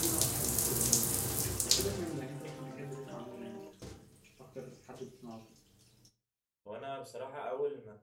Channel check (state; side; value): identical; both; correlation 1.00